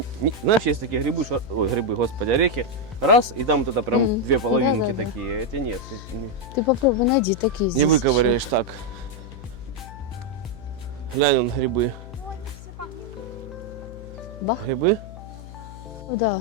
знаешь, есть такие грибы, ой, грибы, господи, орехи, раз, и там вот это прям Мгм. две половинки Да-да-да. такие, эти нет, Ты попробуй найди такие не здесь. выковыряешь так. Глянь, вон грибы. Ну, они все погнили. Бах. Грибы Да,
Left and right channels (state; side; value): noise; left; hum, 14 dB below the sound